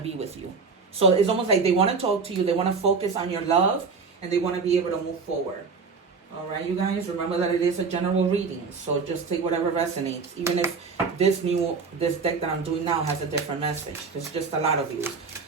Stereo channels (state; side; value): quieter; left; 4.9 dB